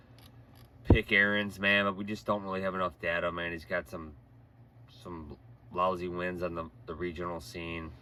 pick Aarons, man, but we just don't really have enough data, man. He's got some lousy wins on the regional scene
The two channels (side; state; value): both; identical; correlation 1.00